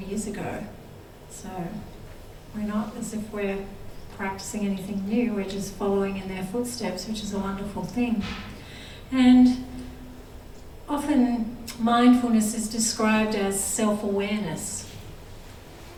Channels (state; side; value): identical; both; correlation 1.00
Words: years ago. So we're not as if we're practicing anything new, we're just following in their footsteps, which is a wonderful thing. And often mindfulness is described as self-awareness.